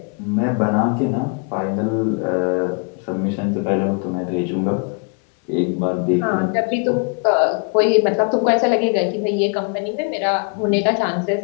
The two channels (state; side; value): quieter; right; 38.3 dB